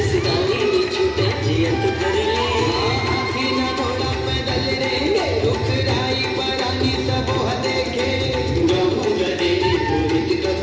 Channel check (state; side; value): identical; both; correlation 1.00